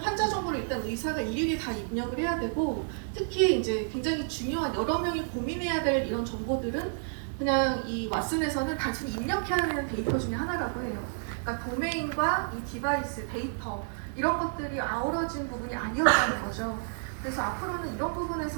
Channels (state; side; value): silent; left; digital silence